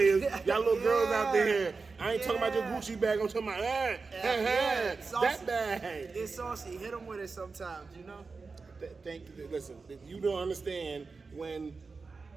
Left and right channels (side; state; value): left; quieter; 4.4 dB